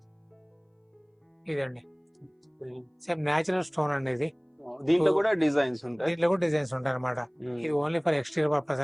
ఇదండి సేమ్ నేచురల్ స్టోన్ అండి ఇది. దీంట్లో కూడా డిజైన్స్ ఉంటాయి. దీంట్లో కూడా డిజైన్స్ ఉంటాయి అనమాట. ఇది ఓన్లీ ఫర్ ఎక్స్టీరియర్ పర్పస్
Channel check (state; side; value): identical; both; correlation 1.00